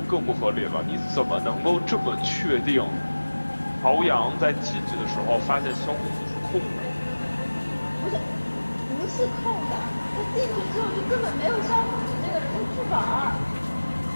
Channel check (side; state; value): both; inverted; correlation -1.00